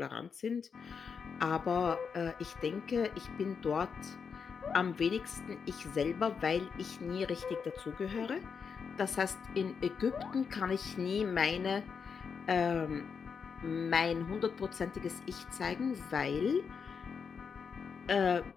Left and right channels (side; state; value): right; quieter; 6.1 dB